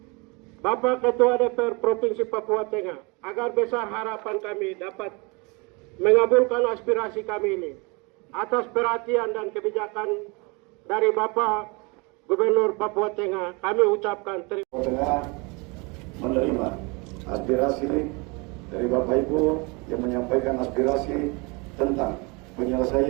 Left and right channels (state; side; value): quieter; left; 28.8 dB